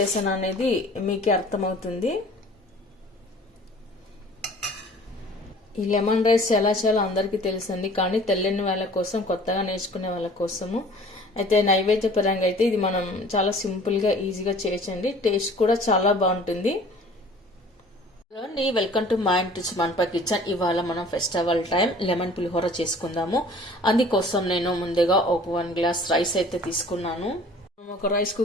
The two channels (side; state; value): both; normal; correlation 0.49